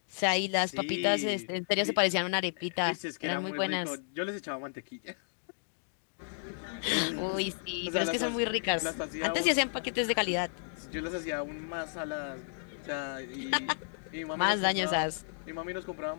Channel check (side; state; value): right; silent; digital silence